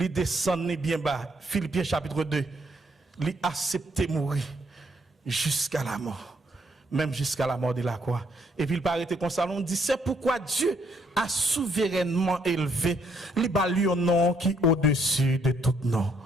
descend bien bas. Philippiens chapitre 2, il accepte mourir jusqu'à la mort, même jusqu'à la mort de la croix. Et puis il paraît comme ça, on dit c'est pourquoi Dieu a souverainement élevé le nom qui est au-dessus de tout nom.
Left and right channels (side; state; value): both; normal; correlation 0.71